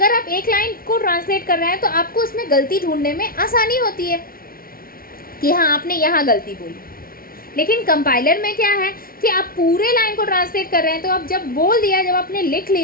आप एक लाइन को ट्रांसलेट कर रहे हैं तो आपको उसमें गलती ढूंढने में आसानी होती है कि हाँ आपने यहाँ गलती बोली। लेकिन कंपाइलर में क्या है कि आप पूरे लाइन को ट्रांसलेट कर रहे हैं, तो आप जब बोल दिया, जब आपने लिख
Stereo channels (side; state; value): right; late; 0.43 ms